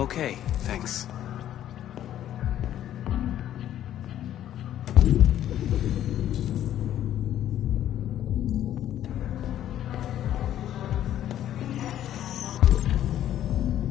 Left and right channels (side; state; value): right; quieter; 11.6 dB